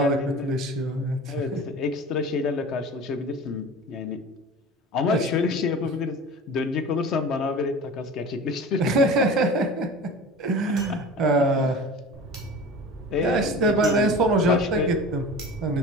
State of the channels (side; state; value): both; normal; correlation 0.36